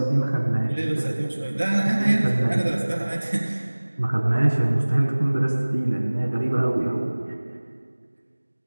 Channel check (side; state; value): both; inverted; correlation -1.00